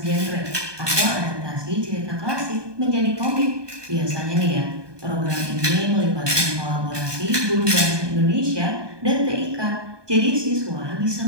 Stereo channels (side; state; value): left; late; 1.2 ms